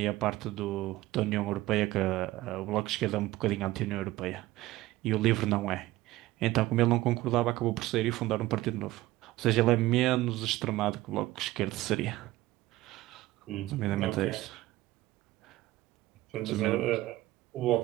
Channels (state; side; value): quieter; left; 17.2 dB